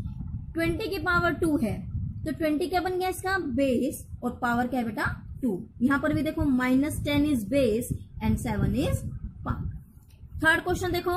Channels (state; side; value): identical; both; correlation 1.00